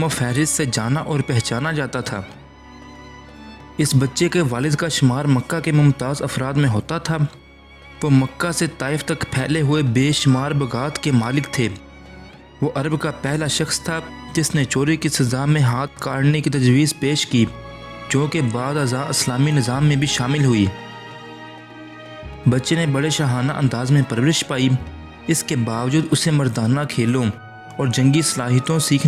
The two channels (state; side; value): identical; both; correlation 1.00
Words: फहरिस्त से जाना और पहचाना जाता था। इस बच्चे के वालिद का शुमार मक्का के मुमताज़ अफराद में होता था। वो मक्का से ताइफ तक फैले हुए बेशुमार बगात के मालिक थे। वो अरब का पहला शख्स था जिसने चोरी की सज़ा में हाथ काटने की तजवीज़ पेश की, जो कि बाद अज़ा इस्लामी निज़ाम में भी शामिल हुई। बच्चे ने बड़े शाहाना अंदाज में परवरिश पाई। इसके बावजूद उसे मर्दाना खेलों और जंगी सलाहियतों